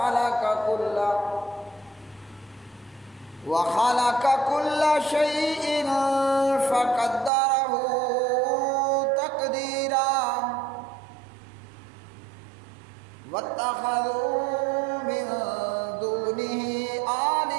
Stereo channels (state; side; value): drops out; left; at 7.3 s